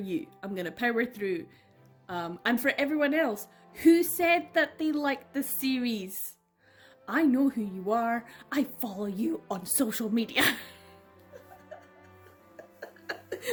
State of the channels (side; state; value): both; identical; correlation 1.00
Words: I'm gonna power through. And for everyone else who said that they liked the series, I know who you are. I follow you on social media.